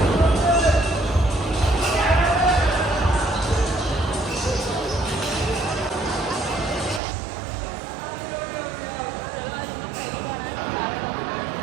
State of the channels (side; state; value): left; drops out; at 7.0 s